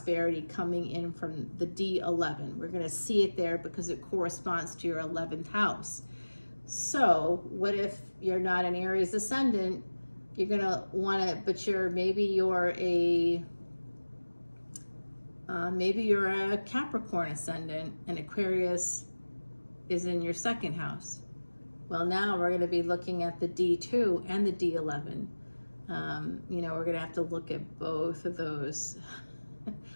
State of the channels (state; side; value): inverted; both; correlation -1.00